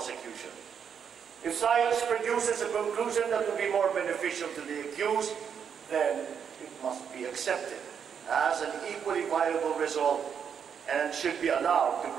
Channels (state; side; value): quieter; left; 7.5 dB